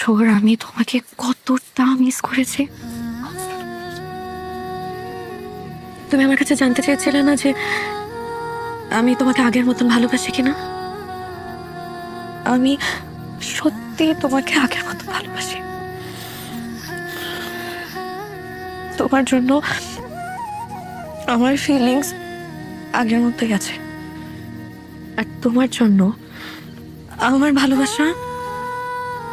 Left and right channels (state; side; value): identical; both; correlation 1.00